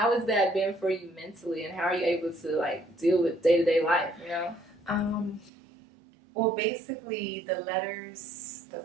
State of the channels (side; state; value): left; drops out; at 5.5 s